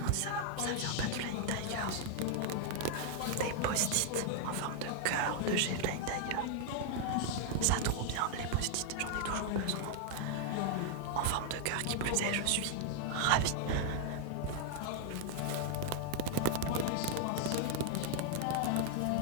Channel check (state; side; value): different; both; correlation 0.00